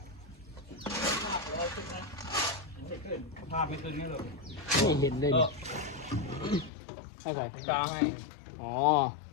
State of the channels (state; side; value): drops out; right; at 6.7 s